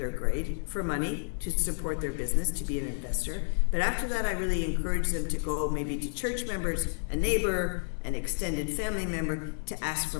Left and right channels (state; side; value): silent; right; digital silence